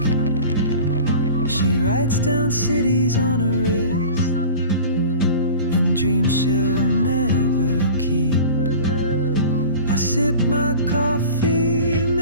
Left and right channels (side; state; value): both; inverted; correlation -0.39